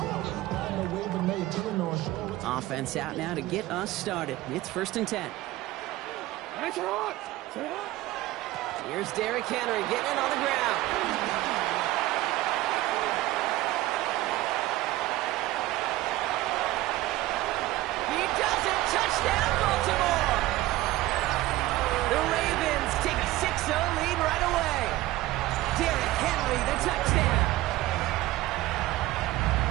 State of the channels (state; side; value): quieter; left; 17.0 dB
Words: offense out now to get us started. It's 1st and 10. Here's Derrick Henry getting it on the ground. He does it! Touchdown, Baltimore! The Ravens take a 6-0 lead right away. Derrick Henry, the touchdown.